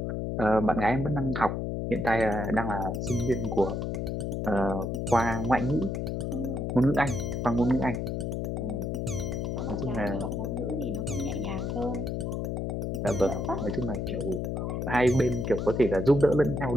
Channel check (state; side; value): noise; left; hum, 2 dB below the sound